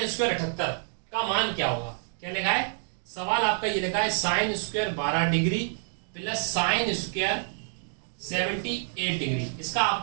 स्क्वायर 78 का मान क्या होगा। क्या लिखा है सवाल आपका, ये लिखा है sine square 12 degree plus sine square 78 degree, इसका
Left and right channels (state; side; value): silent; left; digital silence